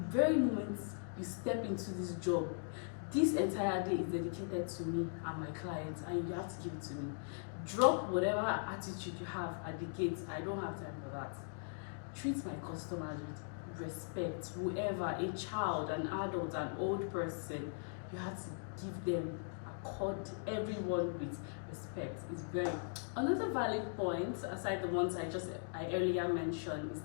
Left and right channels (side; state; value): right; silent; digital silence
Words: moment you step into this job, this entire day is dedicated to me and my clients, and you have to give it to me. Drop whatever attitude you have at the gate. I don't have time for that. Treat my customers with respect. Whoever, a child, an adult, an old person, you have to give them, accord everyone with respect. It's very. Another valid point, aside the ones I earlier mentioned, is